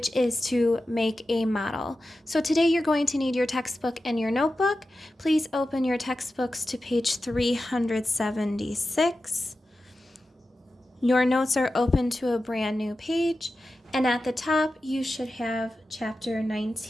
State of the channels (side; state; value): both; normal; correlation 0.93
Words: is to make a model. So today you're going to need your textbook and your notebook. Please open your textbooks to page 376. Your notes are open to a brand new page, and at the top you should have Chapter